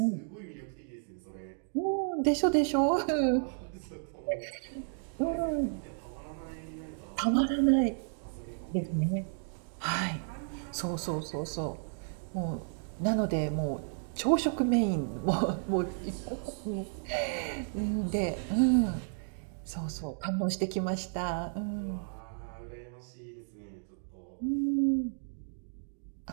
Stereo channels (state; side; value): silent; left; digital silence